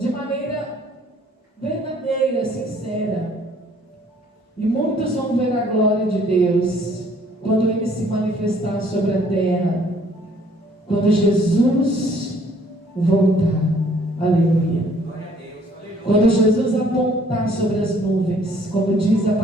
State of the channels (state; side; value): normal; both; correlation 0.60